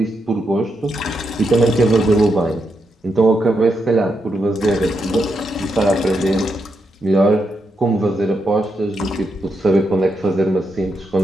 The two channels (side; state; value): both; normal; correlation 0.83